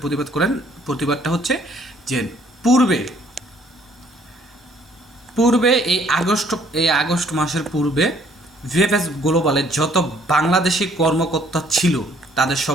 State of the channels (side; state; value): both; normal; correlation 0.62